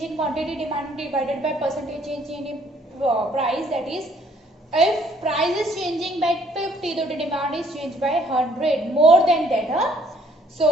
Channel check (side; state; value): both; normal; correlation 0.63